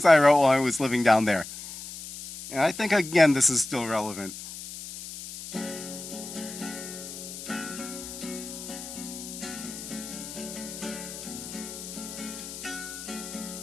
I wrote while I was living down there. And I think, again, this is still relevant.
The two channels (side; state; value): left; noise; hiss, 11 dB below the sound